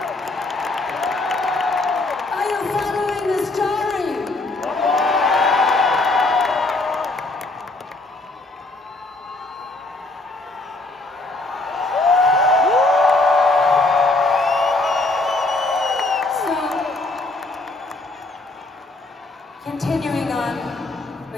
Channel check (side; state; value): right; quieter; 3.0 dB